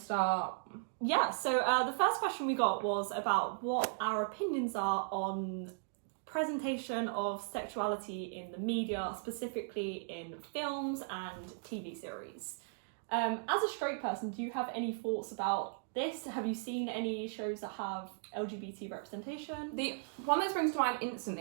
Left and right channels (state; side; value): silent; left; digital silence